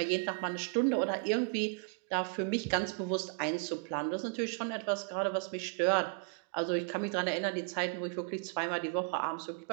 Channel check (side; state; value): left; quieter; 36.1 dB